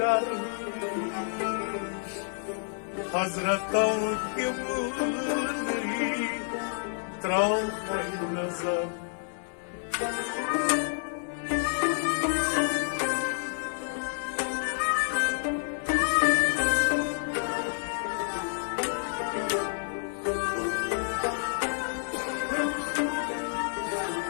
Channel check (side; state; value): right; silent; 58 dB below the other